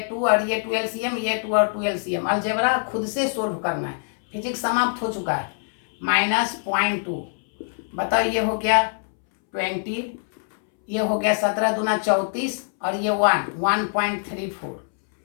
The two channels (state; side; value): silent; right; 63 dB below the other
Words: 2 और ये 2 एलसीएम, ये 2 और 2 एलसीएम, अलजेब्रा खुद से सोल्व करना है, फिजिक्स समाप्त हो चुका है, माइनस 0.2, बताओ ये हो गया 20, ये हो गया 17 दूना 34, और ये 1.34